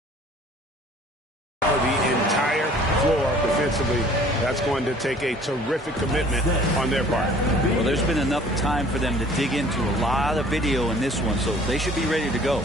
The entire floor defensively. That's going to take a terrific commitment on their part. Well, there's been enough time for them to dig into a lot of video in this one, so they should be ready to go.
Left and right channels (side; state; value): both; normal; correlation 0.52